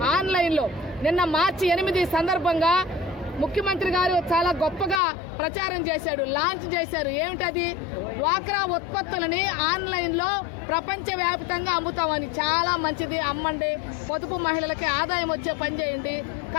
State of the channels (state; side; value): drops out; right; at 5.0 s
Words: ఆన్లైన్ లో నిన్న మార్చి 8 సందర్భంగా ముఖ్యమంత్రి గారు చాలా గొప్పగా ప్రచారం చేశాడు, లాంచ్ చేశారు. ఏమిటది? డ్వాక్రా ఉత్పత్తులని ఆన్లైన్ లో ప్రపంచవ్యాప్తంగా అమ్ముతామని. చాలా మంచిది, అమ్మండి, పొదుపు మహిళలకి ఆదాయం వచ్చే పని చేయండి.